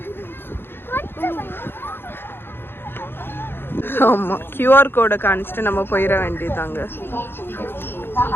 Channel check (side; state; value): right; late; 0.10 ms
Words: ஆமா QR கோடை காணிச்சிட்டு நம்ம போயிட வேண்டியதாங்க.